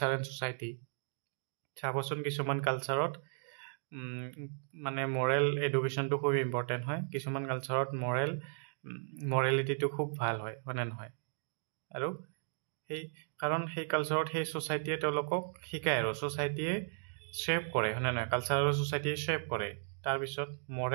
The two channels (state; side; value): silent; left; digital silence